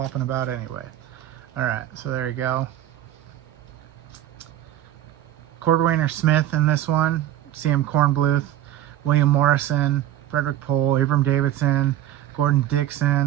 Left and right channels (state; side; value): quieter; left; 12.6 dB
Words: about anyway. All right, so there you go. Cordwainer Smith in this one, C.M. Kornbluth, William Morrison, Frederick Pohl, Abram Davidson, Gordon